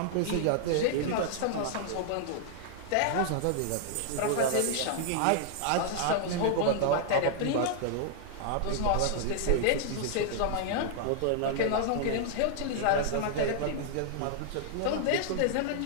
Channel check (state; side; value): different; both; correlation -0.01